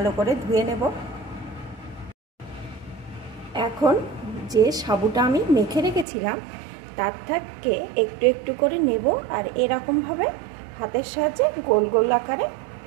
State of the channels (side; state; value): left; drops out; at 6.1 s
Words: করে ধুয়ে নেব। এখন যে সাবুটা আমি মেখে রেখেছিলাম তার থেকে একটু করে নেব, আর এরকমভাবে হাতের সাহায্যে গোল গোল আকারে